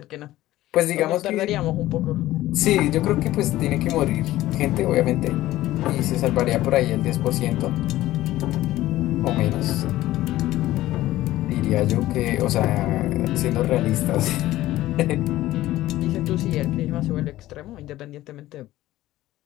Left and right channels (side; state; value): right; quieter; 15.6 dB